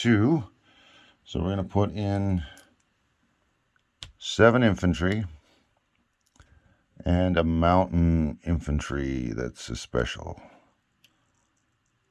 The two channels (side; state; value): both; identical; correlation 1.00